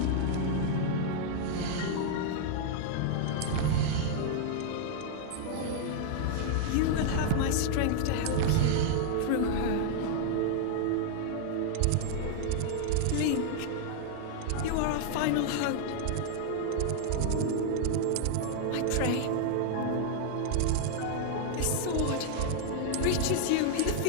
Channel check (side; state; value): both; different; correlation -0.01